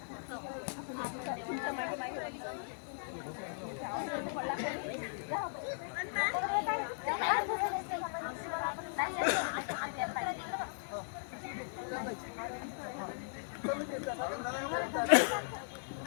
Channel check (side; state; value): right; silent; digital silence